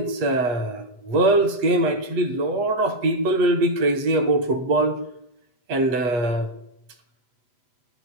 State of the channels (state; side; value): late; left; 8.3 ms